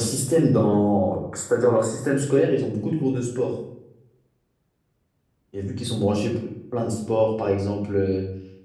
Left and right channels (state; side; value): identical; both; correlation 1.00